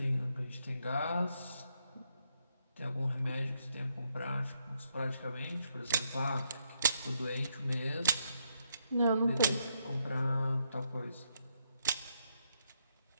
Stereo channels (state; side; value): inverted; both; correlation -0.78